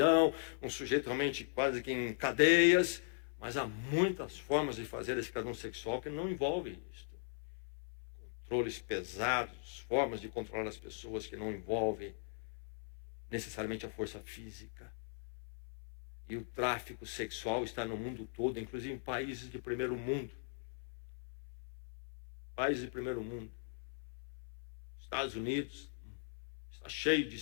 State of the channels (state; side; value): silent; right; 52 dB below the other